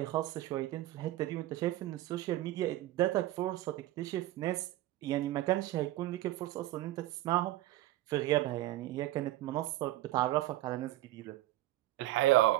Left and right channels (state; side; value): quieter; left; 15.6 dB